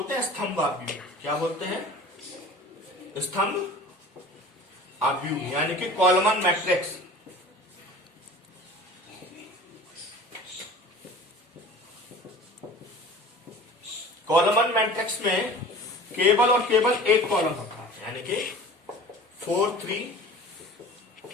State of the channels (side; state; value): both; normal; correlation 0.41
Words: हैं स्तंभ आव्यूह। क्या बोलते हैं? स्तंभ आव्यूह, यानी कि कॉलमन मैट्रिक्स। कॉलमन मैट्रिक्स में केवल और केवल एक कॉलम होता है, यानी कि 4 3